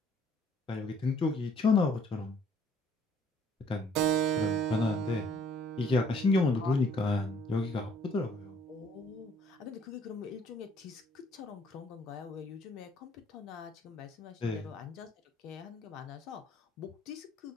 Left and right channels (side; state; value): both; normal; correlation 0.61